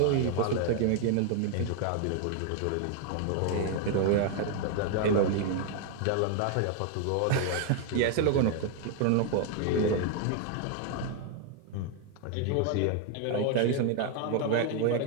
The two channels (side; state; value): both; different; correlation 0.01